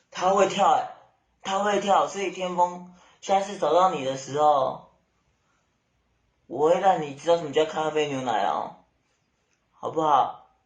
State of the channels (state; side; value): identical; both; correlation 1.00